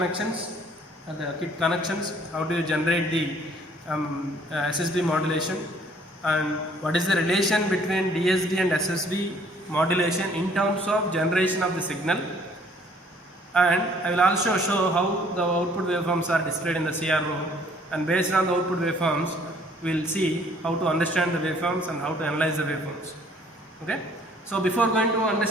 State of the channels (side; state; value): both; normal; correlation 0.59